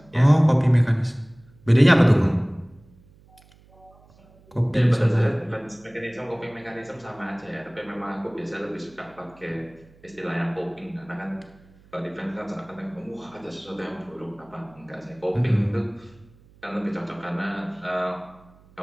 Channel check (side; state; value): right; noise; hum, 27 dB below the sound